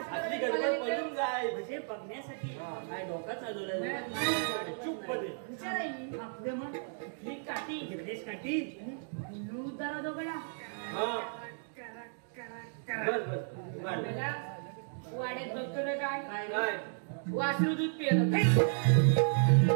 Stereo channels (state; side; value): silent; left; digital silence